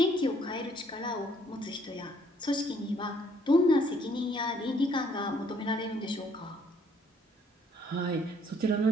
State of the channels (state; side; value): normal; both; correlation 0.64